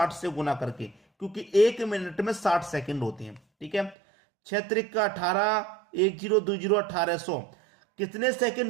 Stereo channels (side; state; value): left; drops out; at 4.0 s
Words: से गुना करके, क्योंकि 1 मिनट में 60 सेकंड होते हैं। ठीक है, 6 त्रिक का 18, 1020 1800। कितने